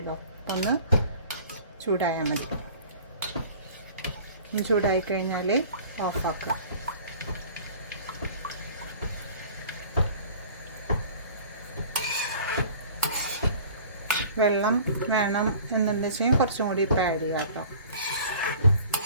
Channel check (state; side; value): inverted; both; correlation -0.47